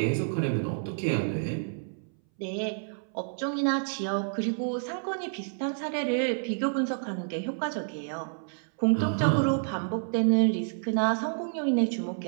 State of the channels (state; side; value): silent; left; 59 dB below the other